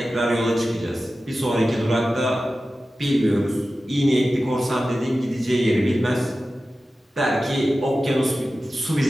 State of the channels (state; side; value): normal; both; correlation 0.94